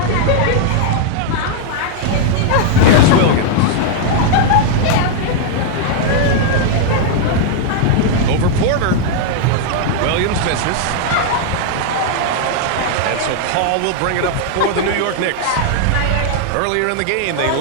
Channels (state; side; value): different; both; correlation -0.01